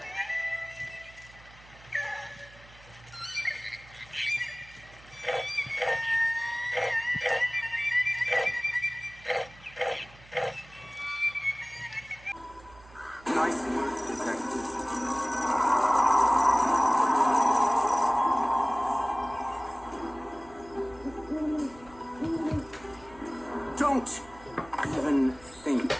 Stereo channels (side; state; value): right; noise; hum, 23 dB below the sound